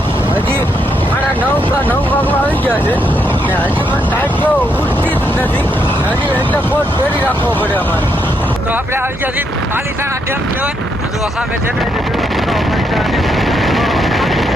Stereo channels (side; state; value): both; normal; correlation 0.77